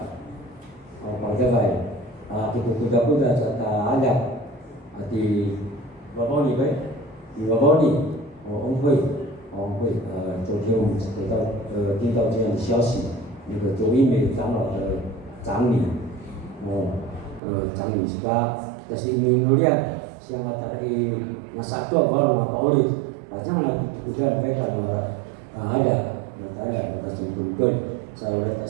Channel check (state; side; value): drops out; left; at 17.4 s